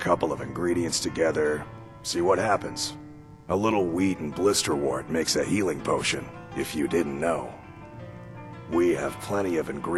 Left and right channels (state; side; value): identical; both; correlation 1.00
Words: of ingredients together, see what happens. A little wheat and blisterwort makes a healing potion, if you didn't know. We have plenty of